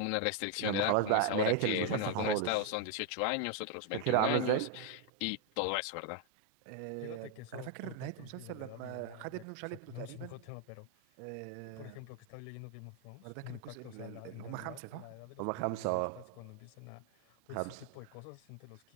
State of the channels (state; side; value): different; both; correlation 0.00